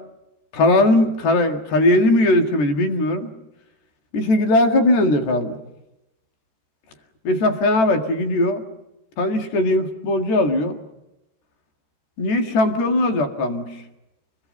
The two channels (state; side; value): late; right; 14 ms